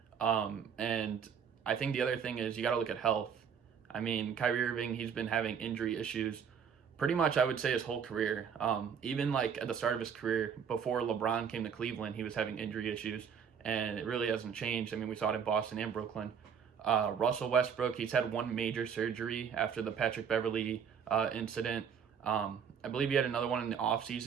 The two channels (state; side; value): quieter; left; 7.3 dB